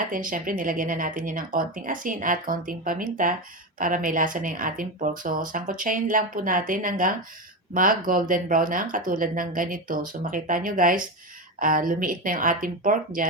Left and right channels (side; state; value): both; normal; correlation 0.17